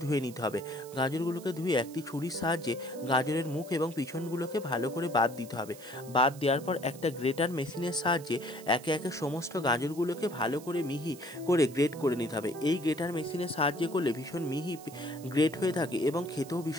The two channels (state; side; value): noise; right; hiss, 19 dB below the sound